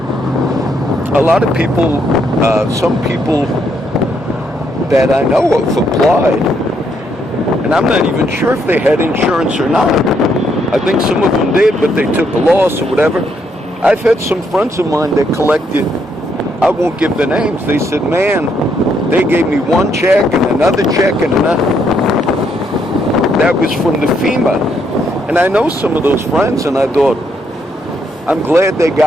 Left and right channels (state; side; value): normal; both; correlation 0.74